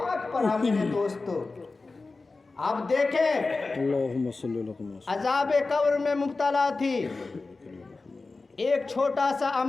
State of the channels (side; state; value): right; quieter; 3.7 dB